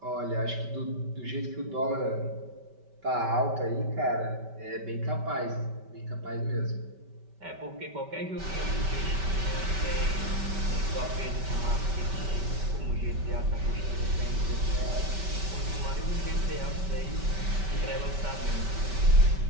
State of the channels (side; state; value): left; late; 5.2 ms